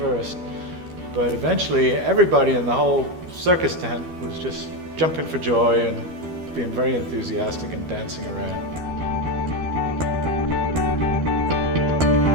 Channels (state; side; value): late; left; 12 ms